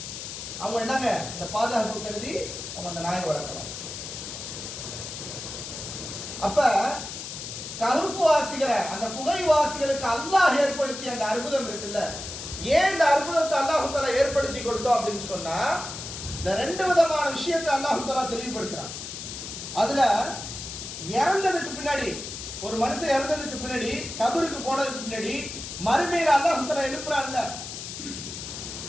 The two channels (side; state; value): left; noise; hiss, 8 dB below the sound